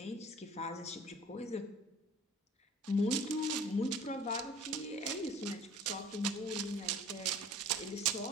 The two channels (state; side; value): normal; both; correlation 0.47